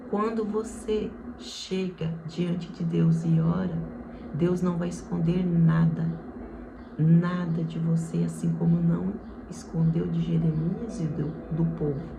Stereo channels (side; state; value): both; identical; correlation 1.00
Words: quando você chega diante de Deus e ora, Deus não vai esconder nada de você, assim como não escondeu de Jeremias e do povo.